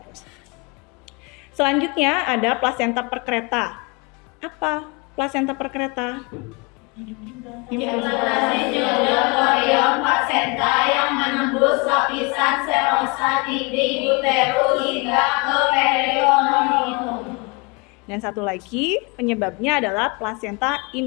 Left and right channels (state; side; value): quieter; right; 29.6 dB